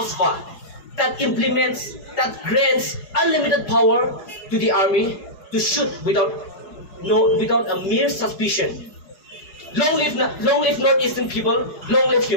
that grants unlimited power to the army to shoot without a mere suspicion. Long live Northeastern people, long live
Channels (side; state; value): right; late; 4.8 ms